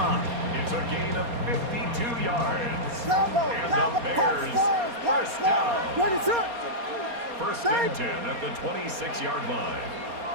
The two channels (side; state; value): left; late; 4.2 ms